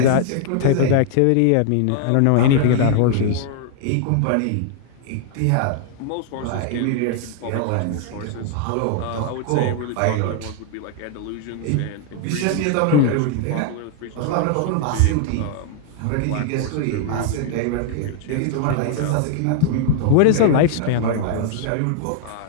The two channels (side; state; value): both; different; correlation 0.00